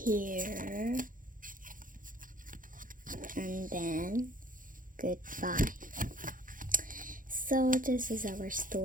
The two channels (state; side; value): late; left; 0.39 ms